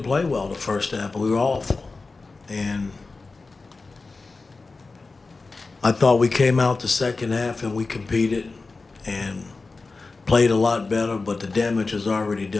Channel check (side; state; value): right; quieter; 3.8 dB